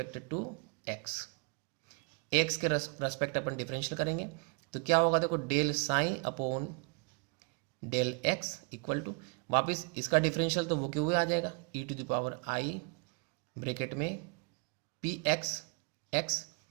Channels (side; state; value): left; quieter; 34.3 dB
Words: to x, x के रेस्पेक्ट अपन डिफरेंशियल करेंगे तो क्या होगा, देखो del psi upon del x equal to वापस इसका डिफरेंशियल तो वो क्यों हुए आ जाएगा, e to the power i bracket में पी एक्स एक्स